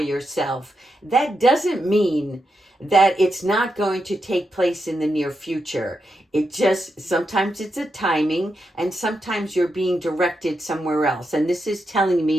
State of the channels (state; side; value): normal; both; correlation 0.85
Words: yourself, that doesn't mean that it's not going to take place in the near future. It just, sometimes it's a timing, and sometimes you're being directed somewhere else. And this is telling